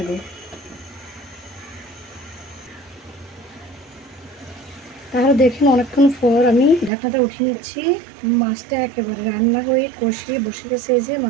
তাহলে দেখুন অনেকক্ষণ পর আমি ঢাকনাটা উঠিয়ে নিচ্ছি। মাছটা একেবারে রান্না হয়ে কষিয়ে বসে গেছে। এই যে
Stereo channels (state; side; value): drops out; left; at 6.9 s